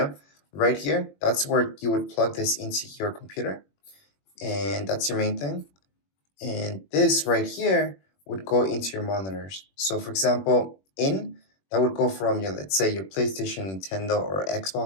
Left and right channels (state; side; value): late; right; 21 ms